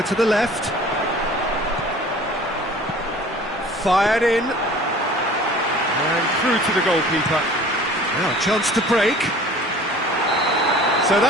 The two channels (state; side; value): normal; both; correlation 0.46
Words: to the left. Fired in. And through to the goalkeeper. Now a chance to break. So